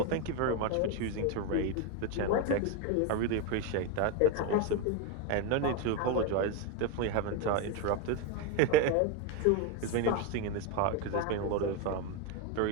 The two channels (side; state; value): both; different; correlation 0.02